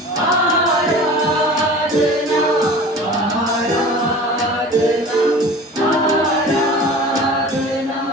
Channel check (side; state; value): both; normal; correlation 0.40